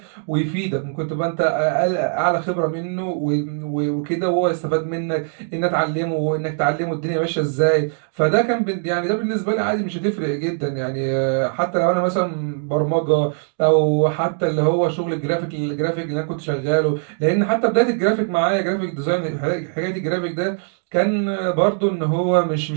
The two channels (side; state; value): left; silent; 65 dB below the other